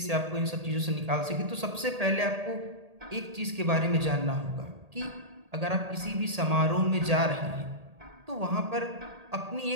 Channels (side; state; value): left; late; 1.8 ms